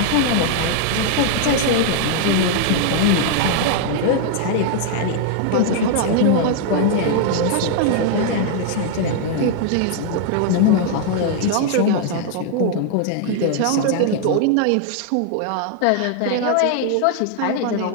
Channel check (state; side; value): different; both; correlation 0.00